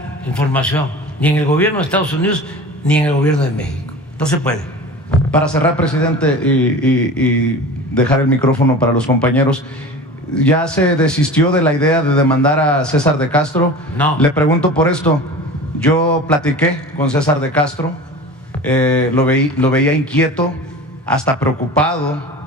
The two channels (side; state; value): both; normal; correlation 0.36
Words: información, ni en el gobierno de Estados Unidos, ni en el gobierno de México. No se puede. Para cerrar, presidente, y dejar el micrófono para los compañeros, ¿ya se desistió de la idea de demandar a César de Castro? No. Le pregunto por esto. Yo platiqué con César de Castro, lo veía inquieto, hasta preocupado